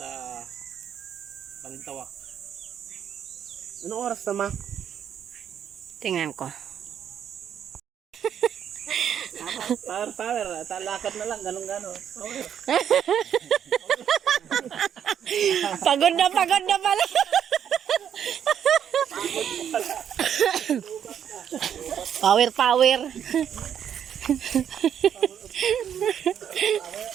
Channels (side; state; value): left; quieter; 9.0 dB